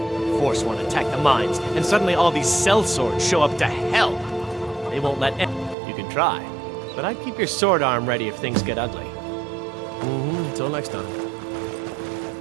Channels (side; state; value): left; drops out; at 5.8 s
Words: Forsworn attack the mines, and suddenly all these sellswords show up to hell. They won't let You can try, but I'd keep your sword arm ready if things get ugly. Until next time.